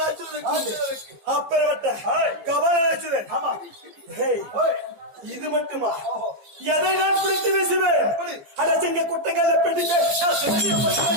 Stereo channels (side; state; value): left; late; 14 ms